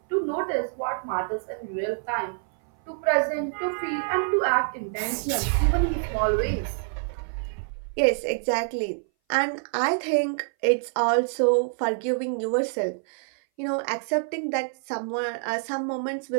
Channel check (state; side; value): silent; left; 59 dB below the other